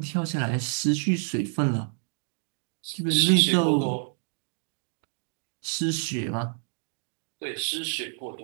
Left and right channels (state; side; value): silent; left; digital silence